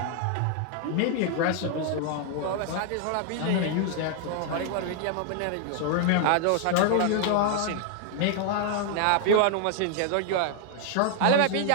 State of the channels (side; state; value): both; different; correlation 0.00